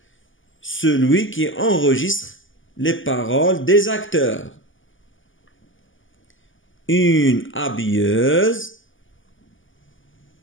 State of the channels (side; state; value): right; late; 0.57 ms